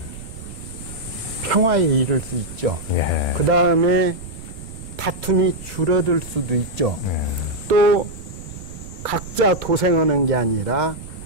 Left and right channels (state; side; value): noise; right; rumble, 13 dB below the sound